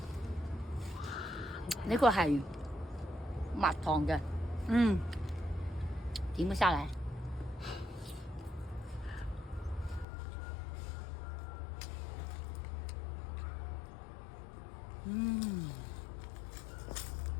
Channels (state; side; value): drops out; right; at 10.1 s